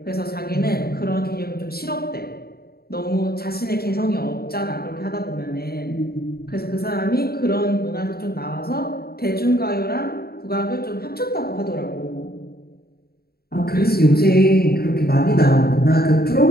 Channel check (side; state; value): right; late; 0.45 ms